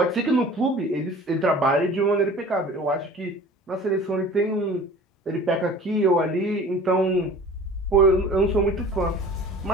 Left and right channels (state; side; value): normal; both; correlation 0.43